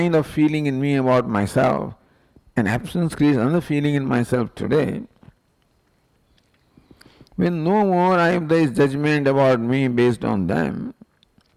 of feeling in me about myself, and absence creates another feeling in myself today. When no more there is judgment about me based on them,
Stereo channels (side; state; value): both; identical; correlation 1.00